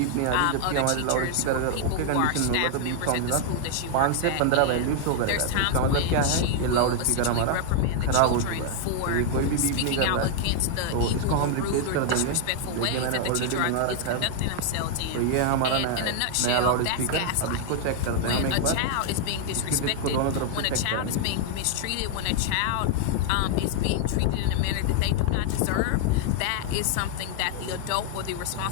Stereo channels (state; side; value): different; both; correlation 0.00